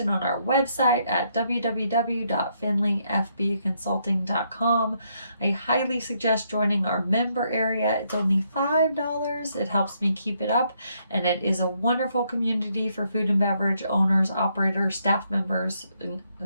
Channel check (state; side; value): inverted; both; correlation -0.74